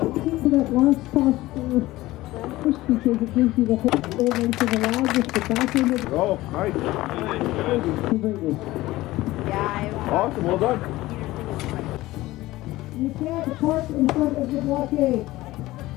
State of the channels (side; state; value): right; quieter; 17.7 dB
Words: that last toss. First, because it gives you the whole length of the lag with the back end of the. Oh, nice. Awesome, well done. You can't park in front of the blockade.